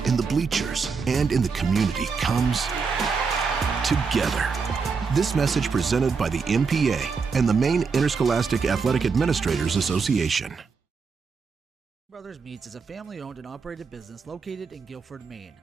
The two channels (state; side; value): quieter; left; 5.2 dB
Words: in the bleachers, and in the community comes together. This message presented by the MPA and the Maine Interscholastic Athletic Administrators Association. Brothers Meats is a family-owned and operated business located in Guilford, Maine.